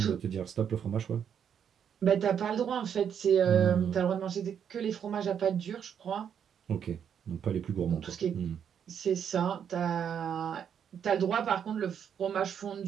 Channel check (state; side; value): quieter; left; 8.2 dB